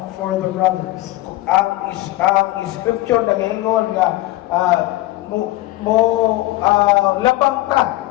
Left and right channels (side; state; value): right; quieter; 17.7 dB